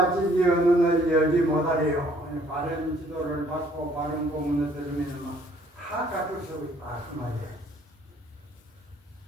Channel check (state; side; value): normal; both; correlation 0.61